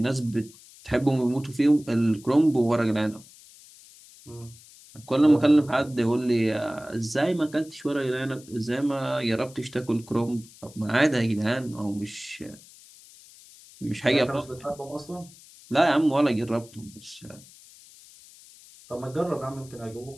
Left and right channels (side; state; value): left; noise; hiss, 22 dB below the sound